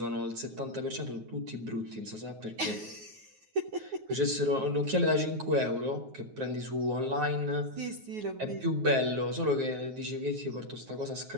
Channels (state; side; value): late; left; 9.4 ms